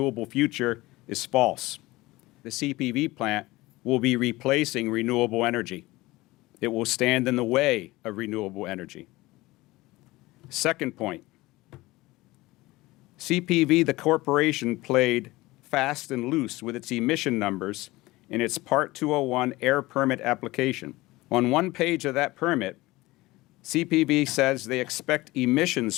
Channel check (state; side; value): quieter; right; 20.0 dB